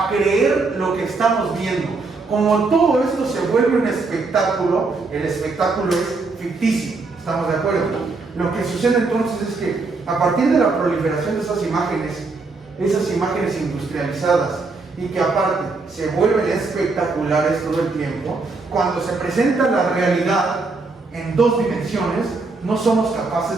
creer lo que estamos viendo. Como todo esto se vuelve un espectáculo, el espectáculo es ficticio, ¿estamos de acuerdo? Lo que sucede entonces es que a partir de la proliferación de esas imágenes industrializadas, y que aparte se vuelven espectaculares todo el tiempo, cuando se presenta la realidad en 2 dimensiones, no somos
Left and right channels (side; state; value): left; quieter; 3.9 dB